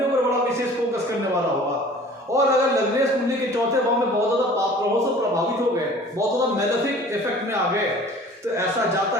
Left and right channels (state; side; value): normal; both; correlation 0.47